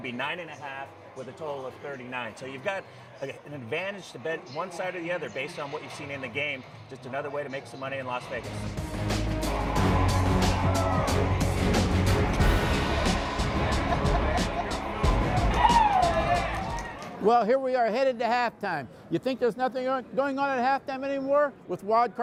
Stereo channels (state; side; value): identical; both; correlation 1.00